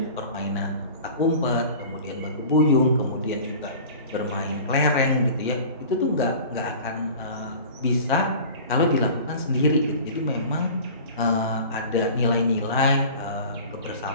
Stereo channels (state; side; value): inverted; both; correlation -0.40